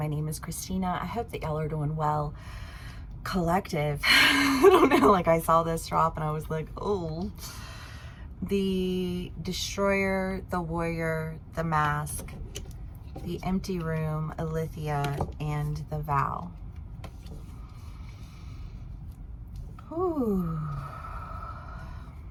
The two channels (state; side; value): identical; both; correlation 1.00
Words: name is Christina. I hope that y'all are doing well. Collective. I don't know, like I saw this drop and I was like, oh. The Destroyer, the Warrior, the Mask, the Empty Room, Alethea, and the Vow. Ooh.